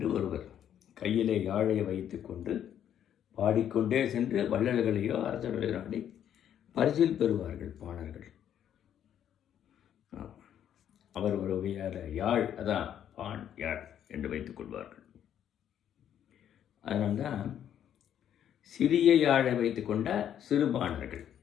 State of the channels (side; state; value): right; quieter; 9.9 dB